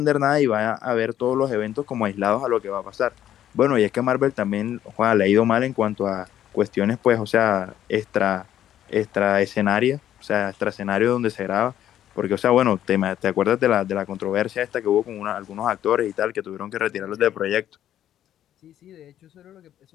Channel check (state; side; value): quieter; right; 11.3 dB